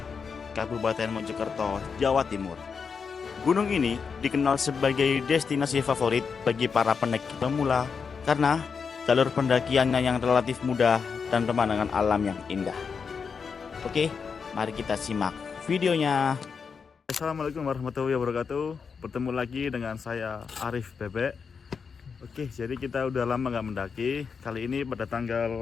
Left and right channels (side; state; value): right; quieter; 5.8 dB